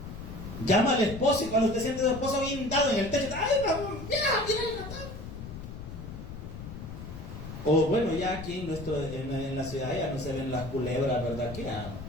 Llama al esposo y cuando usted siente a su esposo bien dado en el techo, ¡ay, mira el ratón! O bueno, ya aquí en la ciudad ya no se ven las culebras, ¿verdad? Aquí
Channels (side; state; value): left; noise; rumble, 10 dB below the sound